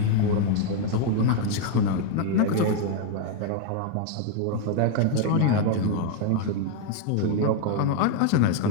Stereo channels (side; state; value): both; different; correlation 0.00